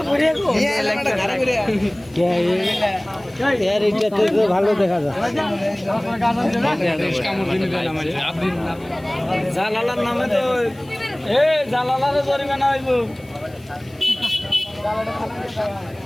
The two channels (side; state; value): left; noise; hiss, 28 dB below the sound